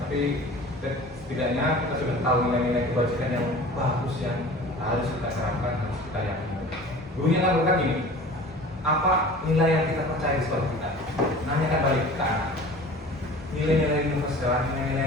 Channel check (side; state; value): both; normal; correlation 0.42